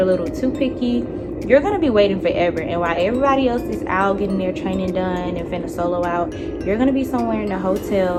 little too picky, you're gonna be waiting forever, and while everybody else is out getting their training done and finna solo out, you're gonna be somewhere in the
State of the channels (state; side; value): identical; both; correlation 1.00